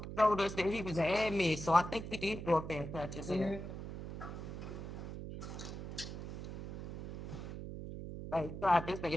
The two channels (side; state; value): right; noise; hum, 8 dB below the sound